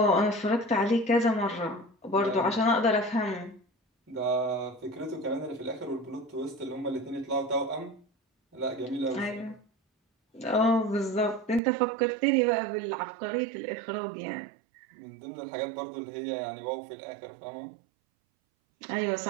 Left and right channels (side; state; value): left; drops out; at 11.6 s